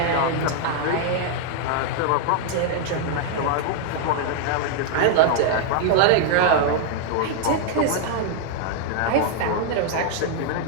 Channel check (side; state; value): both; different; correlation 0.00